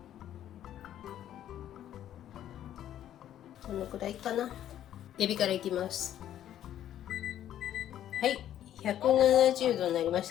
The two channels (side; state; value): right; quieter; 11.4 dB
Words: このくらいかな。エビからいきます。はい、170度になりまし